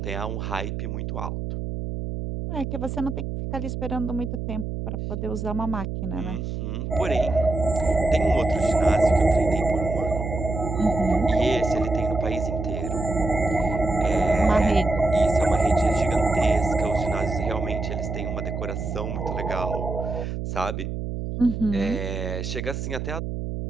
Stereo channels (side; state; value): right; noise; hum, 4 dB below the sound